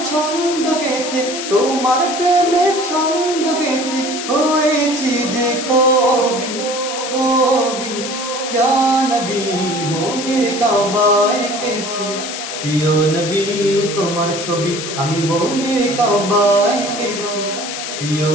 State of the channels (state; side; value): noise; left; hiss, 7 dB below the sound